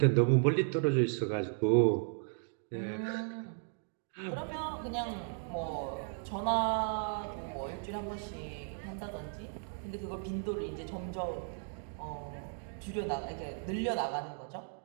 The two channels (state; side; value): silent; left; 54 dB below the other